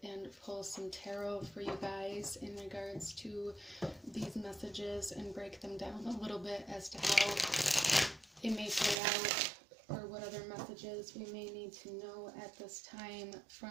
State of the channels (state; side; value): drops out; left; at 9.0 s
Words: and pull some tarot for you guys in regards to these messages, and break them down a little bit as to how it may play out, or what other messages we may need to know at this time